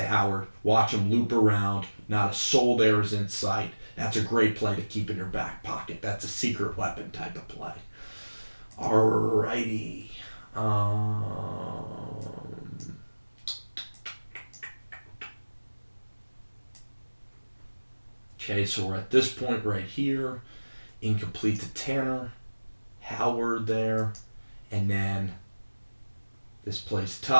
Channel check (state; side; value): inverted; both; correlation -1.00